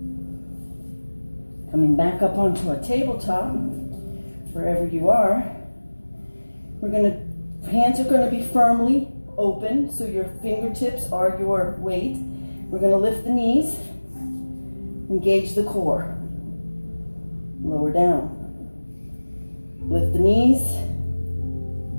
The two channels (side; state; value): both; inverted; correlation -1.00